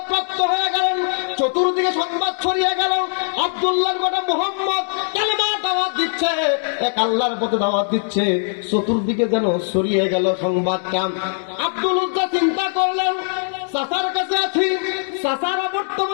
প্রাপ্ত হয়ে গেলেন, চতুর্দিকে সংবাদ ছড়িয়ে গেল আব্দুল্লাহর বেটা মুহাম্মদ কালেমা দাওয়াত দিচ্ছে, এক আল্লাহর পথে দাওয়াত দিচ্ছে। চতুর্দিকে যেন ছড়িয়ে গেল সংবাদটা। আব্দুল উজ্জা চিন্তা করলেন, চাচার কাছে আছি, চাচারা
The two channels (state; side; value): silent; right; digital silence